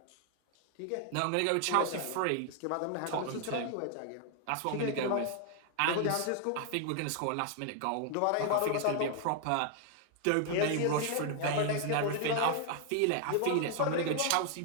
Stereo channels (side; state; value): both; different; correlation 0.00